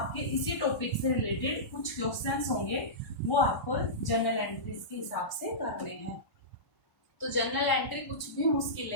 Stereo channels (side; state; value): right; late; 1.2 ms